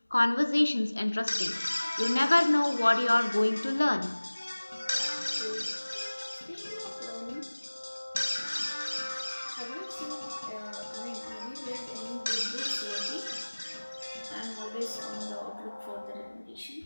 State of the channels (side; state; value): both; inverted; correlation -1.00